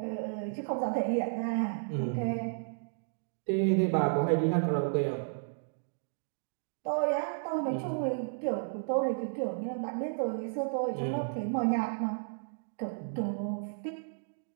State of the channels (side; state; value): left; silent; digital silence